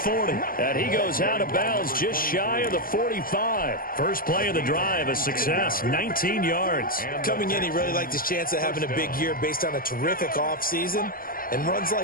And he goes out of bounds just shy of the 45. First play of the drive, a success, 19 yards. Coming in, he really liked his chance of having a big year based on a terrific offseason. And runs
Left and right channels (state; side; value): late; right; 0.41 ms